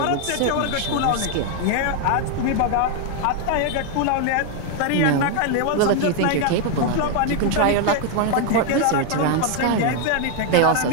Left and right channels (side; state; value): both; different; correlation 0.01